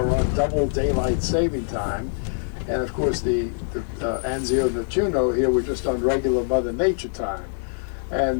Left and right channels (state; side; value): silent; right; digital silence